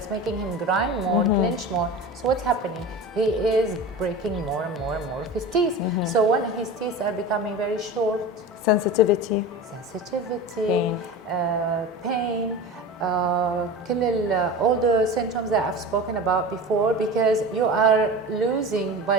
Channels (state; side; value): normal; both; correlation 0.31